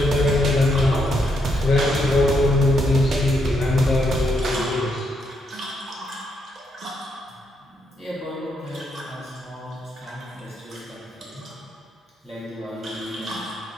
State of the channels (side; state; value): both; normal; correlation 0.78